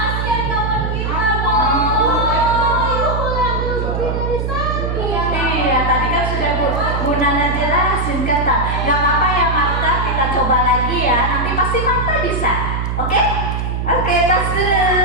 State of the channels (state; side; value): noise; right; hum, 1 dB below the sound